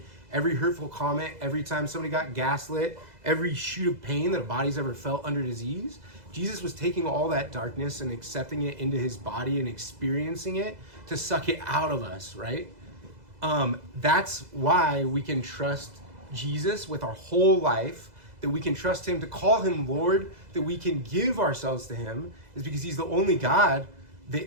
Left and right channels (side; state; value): left; late; 2.0 ms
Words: every hurtful comment, every time somebody got gaslit, every shoot of pain that a body's ever felt under disease, Jesus was taking all that darkness and accepting it into his body and experiencing it to suck it out of us, right? That's why we can trust Jesus with our whole life, that we can trust him to call him Lord, that we can give ourselves to him, is because he's the only God